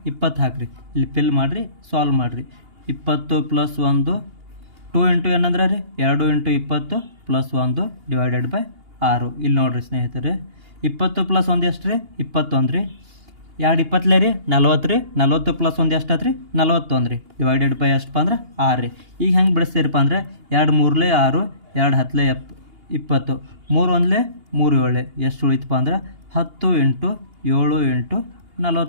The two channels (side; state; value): left; late; 2.8 ms